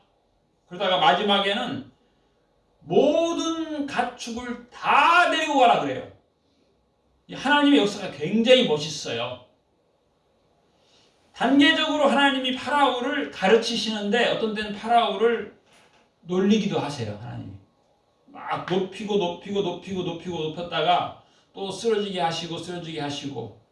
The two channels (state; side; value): identical; both; correlation 1.00